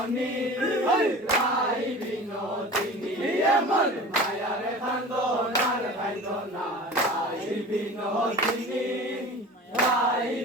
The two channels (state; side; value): normal; both; correlation 0.38